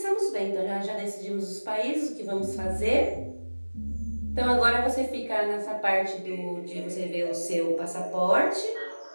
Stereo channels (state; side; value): inverted; both; correlation -1.00